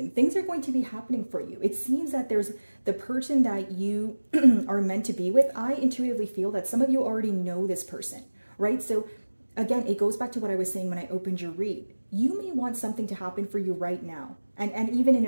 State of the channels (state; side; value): inverted; both; correlation -1.00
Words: Things are going to be happening for you. It seems that there's the person that you are meant to be with. I intuitively feel that some of you already know this person, right? So again, it goes back to what I was saying when I opened your read. You may want something to happen for you right now, and even in